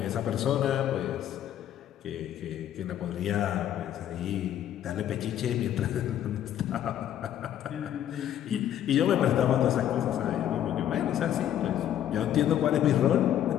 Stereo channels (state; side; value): quieter; right; 11.0 dB